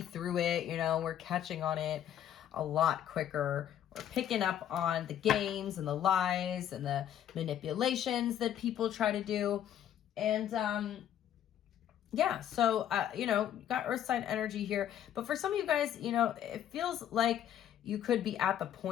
through it, you know, we're catching on it a lot quicker. We're picking up on the games and the lies and the manipulations that people try to do. And yeah, so, you know, you got earth sign energy here. But for some of you guys, you know, it feels like you could be at the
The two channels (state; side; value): quieter; right; 10.5 dB